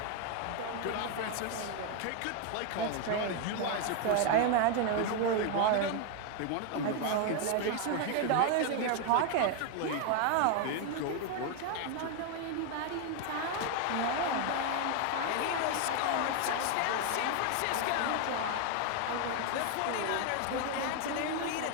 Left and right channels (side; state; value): both; different; correlation 0.01